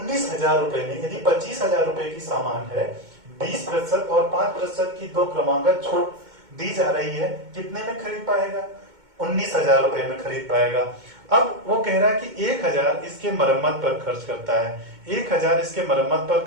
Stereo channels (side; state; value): left; late; 2.2 ms